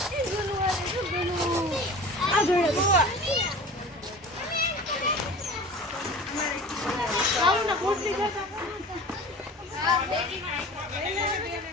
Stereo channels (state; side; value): normal; both; correlation 0.38